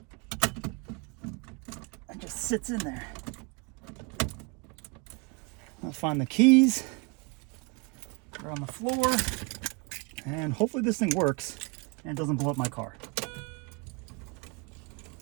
and just sits in there. I'll find the keys. They're on the floor. And hopefully this thing works and doesn't blow up my car.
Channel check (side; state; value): left; quieter; 29.5 dB